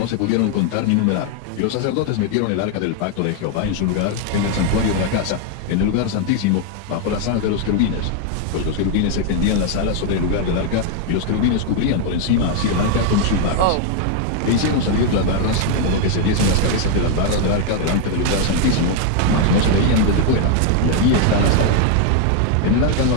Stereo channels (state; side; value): different; both; correlation 0.00